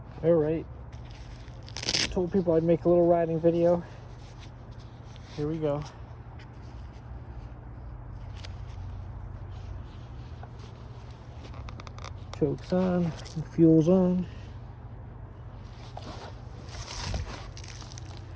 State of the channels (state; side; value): identical; both; correlation 1.00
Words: Alright. Told people I'd make a little riding video. Here we go. Chokes on, fuel's on.